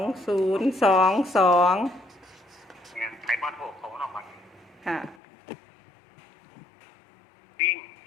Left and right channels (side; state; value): right; drops out; at 5.2 s